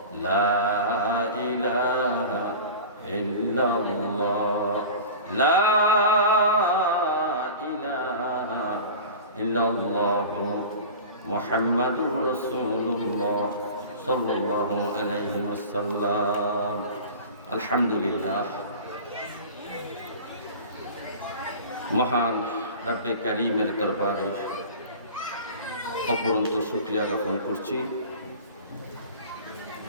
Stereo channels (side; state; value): both; inverted; correlation -0.37